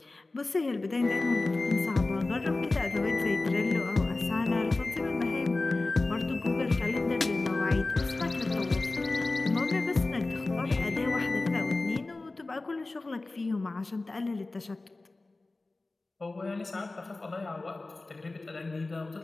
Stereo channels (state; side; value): quieter; right; 3.2 dB